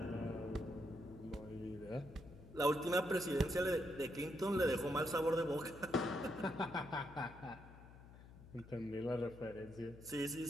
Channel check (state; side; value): noise; left; hum, 18 dB below the sound